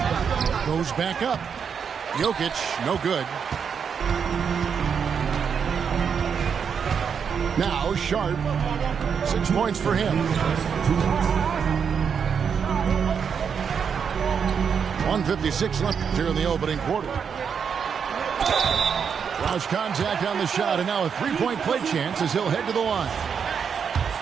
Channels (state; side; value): quieter; left; 6.8 dB